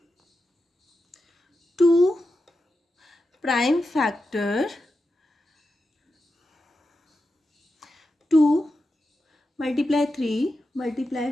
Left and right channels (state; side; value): normal; both; correlation 0.90